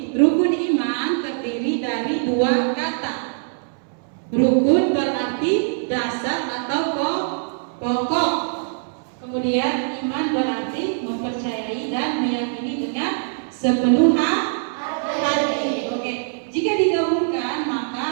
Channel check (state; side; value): silent; left; 64 dB below the other